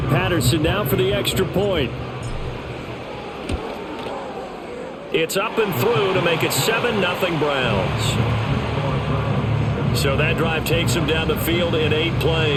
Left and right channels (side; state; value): both; identical; correlation 1.00